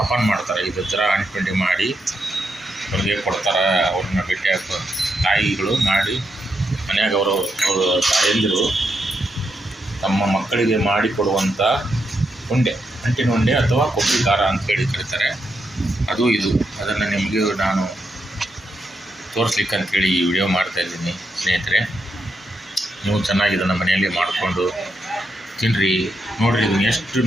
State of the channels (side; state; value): both; normal; correlation 0.82